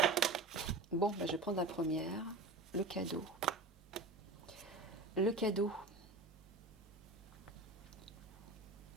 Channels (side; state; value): left; quieter; 3.1 dB